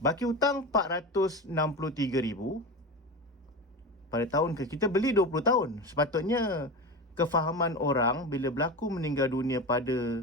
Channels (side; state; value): both; normal; correlation 0.25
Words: hutang 463,000 pada tahun kita beli 20 tahun. Sepatutnya kefahaman orang bila berlaku meninggal dunia pada